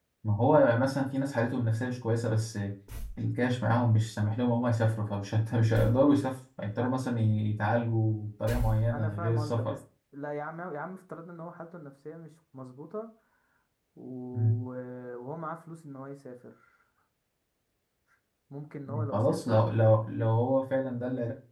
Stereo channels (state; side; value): identical; both; correlation 1.00